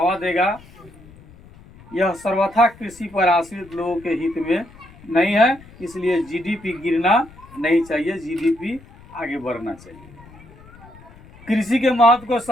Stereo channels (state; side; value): noise; left; rumble, 22 dB below the sound